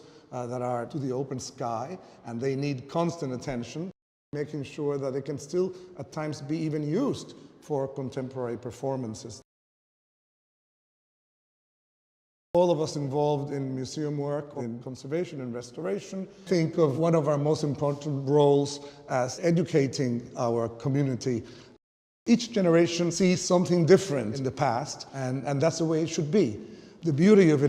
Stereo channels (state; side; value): identical; both; correlation 1.00